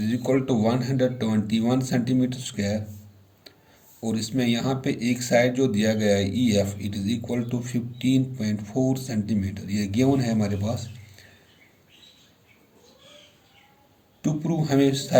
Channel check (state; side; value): identical; both; correlation 1.00